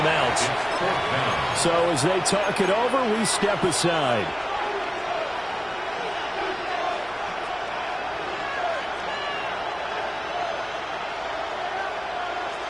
So as they talk it over, we step aside.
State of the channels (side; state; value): left; noise; hum, 26 dB below the sound